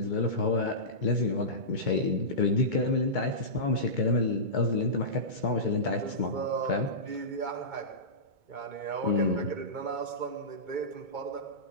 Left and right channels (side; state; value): left; late; 2.2 ms